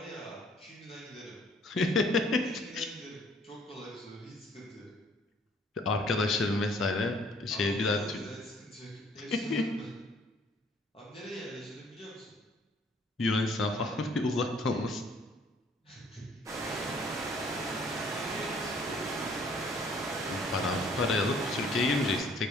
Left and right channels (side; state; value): both; normal; correlation 0.59